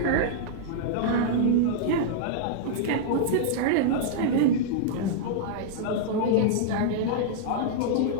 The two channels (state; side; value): different; both; correlation -0.02